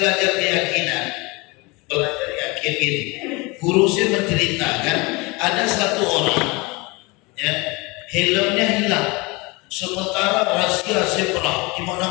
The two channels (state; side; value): quieter; right; 25.6 dB